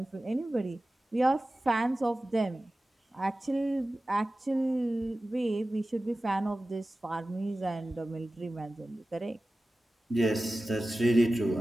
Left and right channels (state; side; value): normal; both; correlation 0.96